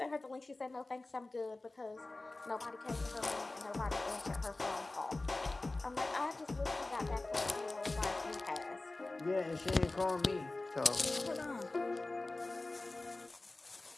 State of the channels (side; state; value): right; quieter; 3.0 dB